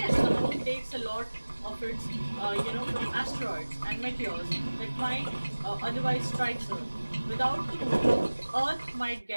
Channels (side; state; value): both; inverted; correlation -1.00